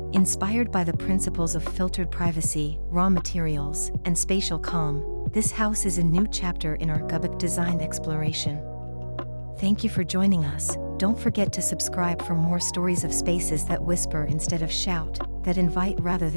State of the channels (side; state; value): both; inverted; correlation -1.00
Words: Inspired by the principles of filtered privacy, raw materials, and spatial calm, this house is a new chapter in our Gubuk design exploration. Thank you for joining us. Don't forget to subscribe for more stories of spaces that whisper instead of shout, that invite rather